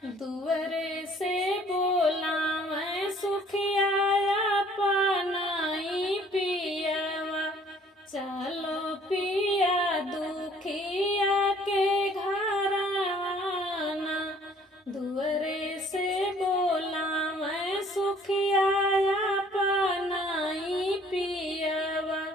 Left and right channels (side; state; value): both; normal; correlation 0.57